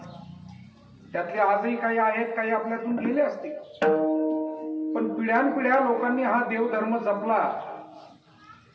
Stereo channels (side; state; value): both; identical; correlation 1.00